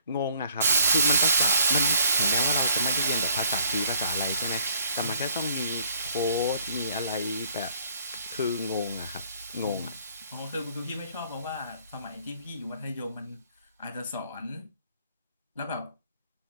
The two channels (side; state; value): both; inverted; correlation -0.61